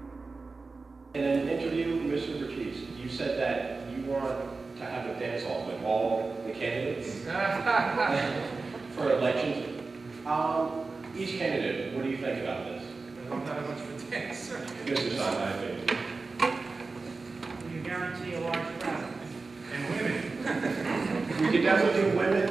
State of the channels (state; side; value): quieter; left; 3.9 dB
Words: In an interview, Mr. Bertise, you said that you want to have a dance-off with all the candidates for elections. Each candidate, what do you think about this? I don't have much of a dance. Mr. Simon, I think. You guarantee a large crowd. And women. We could definitely do